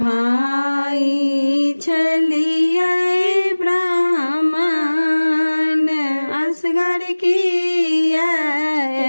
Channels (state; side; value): inverted; both; correlation -1.00